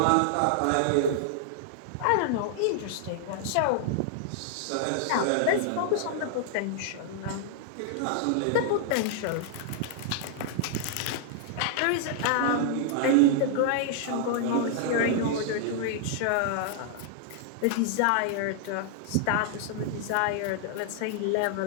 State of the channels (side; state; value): both; different; correlation -0.01